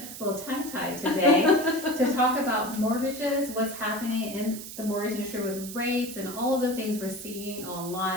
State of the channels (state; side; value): noise; right; hiss, 11 dB below the sound